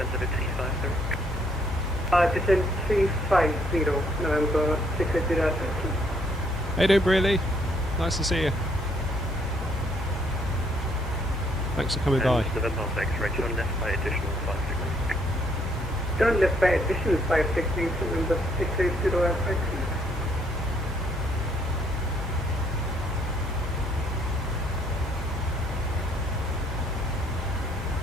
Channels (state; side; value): normal; both; correlation 0.68